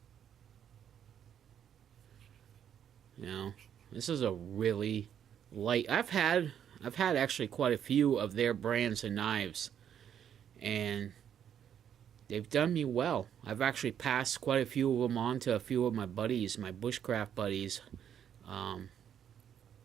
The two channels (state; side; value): quieter; left; 9.1 dB